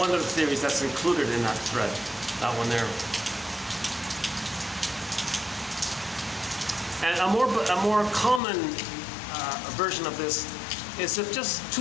of the theories that's included in that thread, that one there. And a more common version of this is if just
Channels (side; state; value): right; drops out; at 8.4 s